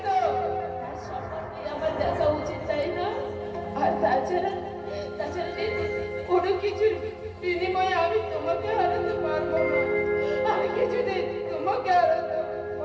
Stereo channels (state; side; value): identical; both; correlation 1.00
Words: তো তার সম্পর্কে আমার দেখা উচিত, তাই না? আর তাছাড়া কোনো কিছুর বিনিময়ে আমি তোমাকে হারাতে পারবো না। আমি কিছুদিন তোমাকে হারাতে